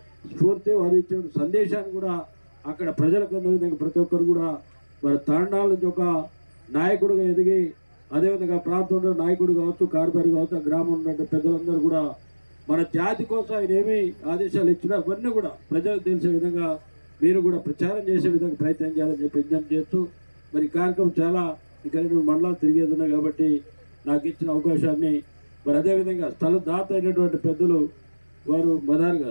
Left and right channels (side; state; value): both; inverted; correlation -1.00